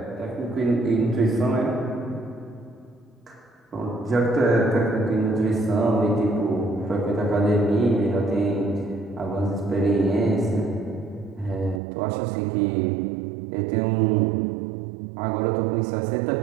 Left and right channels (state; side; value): drops out; left; at 11.8 s